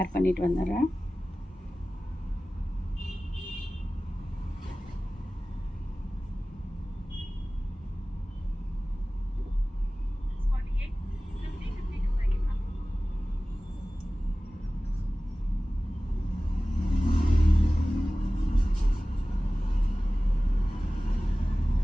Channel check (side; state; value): both; normal; correlation 0.97